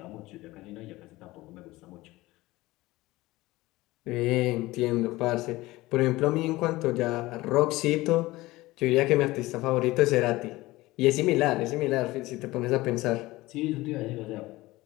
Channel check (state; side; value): quieter; right; 19.2 dB